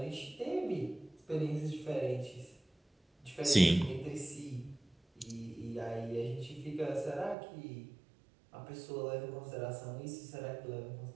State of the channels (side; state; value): left; drops out; at 7.4 s